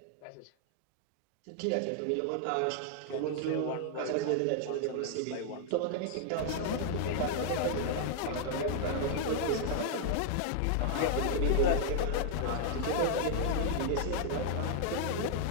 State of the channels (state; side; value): different; both; correlation 0.00